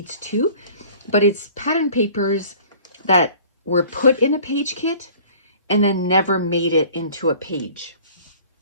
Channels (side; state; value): both; inverted; correlation -0.49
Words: too, but it's pattern papers that were put in a page kit and then never made it into a page.